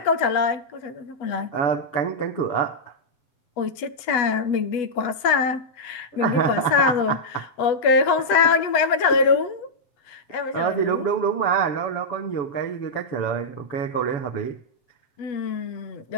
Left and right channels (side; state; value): right; late; 8.1 ms